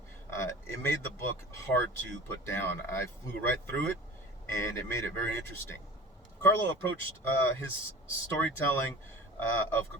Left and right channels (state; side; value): normal; both; correlation 0.39